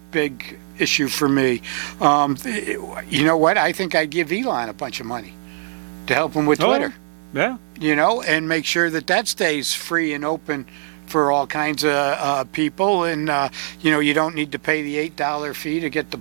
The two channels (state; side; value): silent; left; digital silence